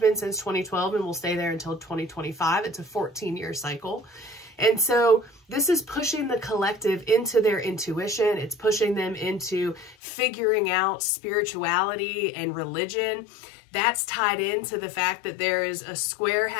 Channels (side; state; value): right; drops out; at 10.0 s